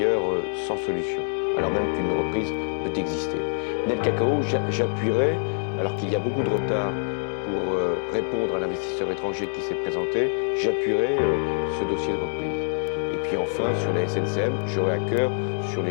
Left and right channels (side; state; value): right; silent; 62 dB below the other